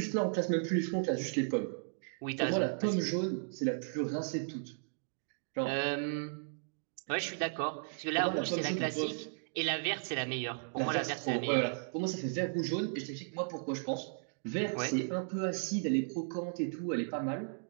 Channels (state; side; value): silent; left; digital silence